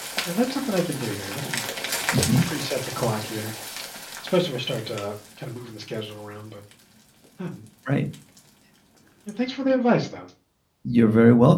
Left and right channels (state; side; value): identical; both; correlation 1.00